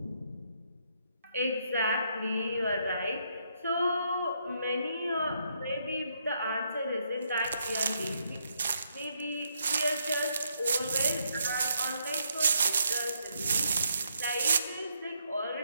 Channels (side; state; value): both; inverted; correlation -0.75